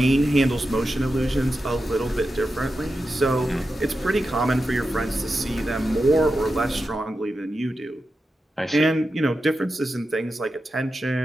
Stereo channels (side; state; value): both; normal; correlation 0.90